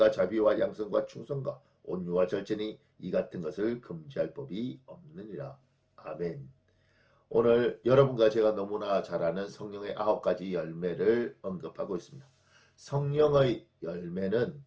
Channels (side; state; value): both; identical; correlation 1.00